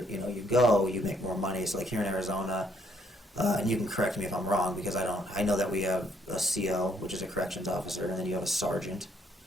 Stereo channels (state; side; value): normal; both; correlation 0.68